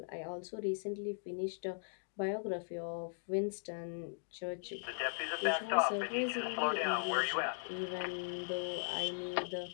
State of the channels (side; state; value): right; silent; digital silence